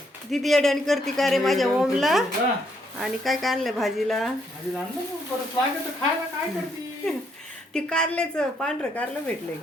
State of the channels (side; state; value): both; normal; correlation 0.73